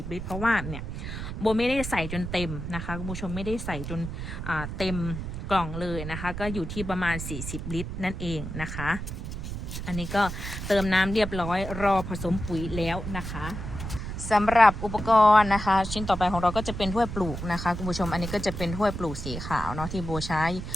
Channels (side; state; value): right; noise; rumble, 6 dB below the sound